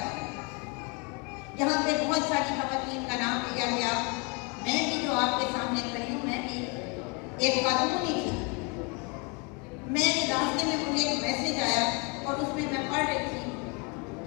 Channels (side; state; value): right; quieter; 31.2 dB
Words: रहा है। यहाँ पे बहुत सारी खवातीन का नाम लिया गया। मैं भी जो आपके सामने खड़ी हूँ, मैं भी एक खातून ही थी। मैं रास्ते में मुझे एक मैसेज आया और उसमें मैं पढ़ रही थी